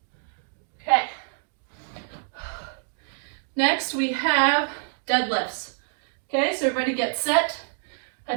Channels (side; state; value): left; silent; digital silence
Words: Okay. Next we have deadlifts. Okay, so everybody get set. I